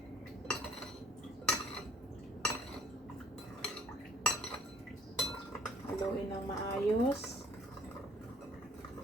Haluin ng maayos.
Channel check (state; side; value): normal; both; correlation 0.58